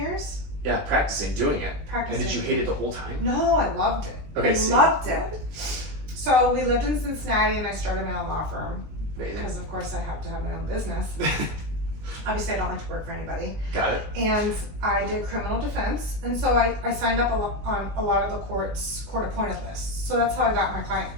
Yeah, practicing, doing it. Practicing. And did you hate it the whole time? No, I loved it. Okay, Loved it. So we lived in Cincinnati and I started my own law firm Amazing. because of course I have to have my own business. Obviously I don't like to work for anybody. Got it. And I did criminal defense, and so I signed up on a lot of the court appointed lists. So that's how I got my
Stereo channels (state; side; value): late; left; 19 ms